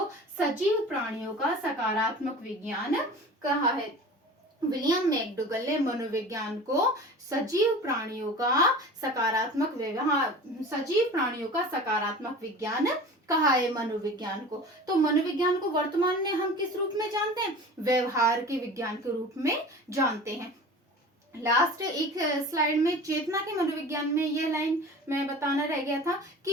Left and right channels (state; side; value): normal; both; correlation 0.38